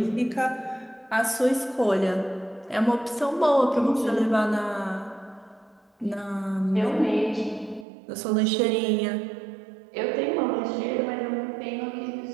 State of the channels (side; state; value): left; drops out; at 7.9 s